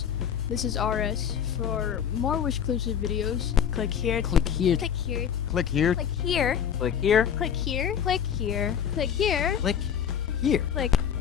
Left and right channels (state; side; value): quieter; right; 8.4 dB